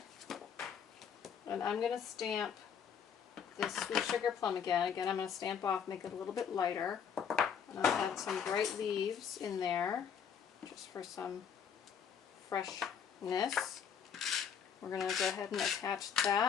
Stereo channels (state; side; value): quieter; right; 7.6 dB